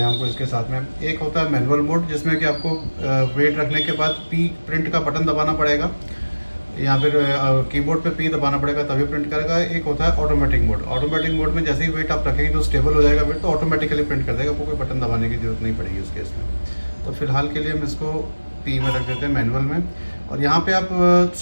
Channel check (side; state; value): both; inverted; correlation -1.00